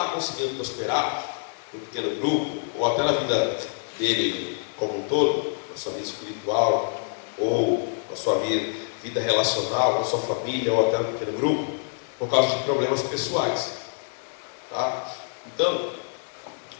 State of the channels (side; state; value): right; silent; digital silence